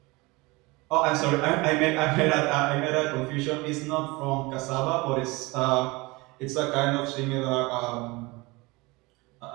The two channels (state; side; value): quieter; left; 23.8 dB